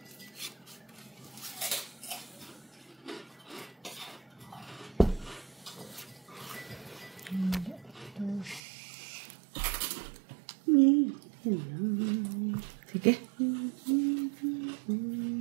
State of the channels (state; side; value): drops out; left; at 8.6 s